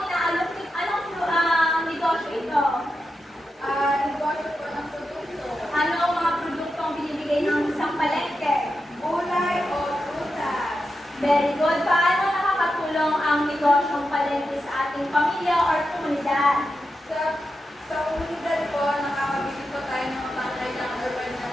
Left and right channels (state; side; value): normal; both; correlation 0.89